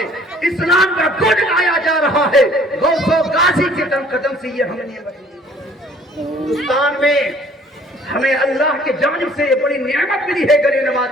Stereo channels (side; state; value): both; normal; correlation 0.56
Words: اسلام کا گڑ گایا جا رہا ہے۔ غوث و غازی کے قدم سے یہ ہم نے ہندوستان میں ہمیں اللہ کی جانب سے یہ بڑی نعمت ملی ہے غریب نواز